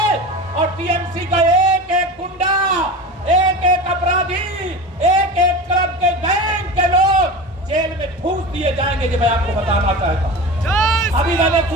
और टीएमसी का एक एक गुंडा जाएंगे, जो मैं आपको बताना चाहता हूँ। अभी मैंने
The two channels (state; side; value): normal; both; correlation 0.30